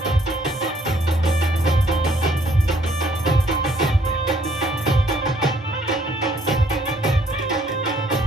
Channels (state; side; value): normal; both; correlation 0.65